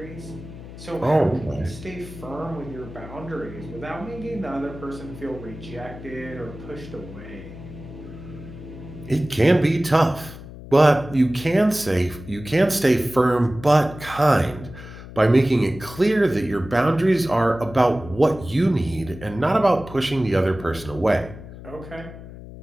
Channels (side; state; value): left; noise; hum, 14 dB below the sound